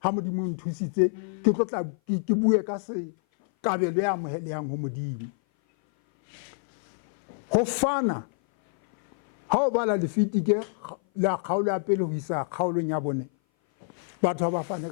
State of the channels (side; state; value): right; silent; 57 dB below the other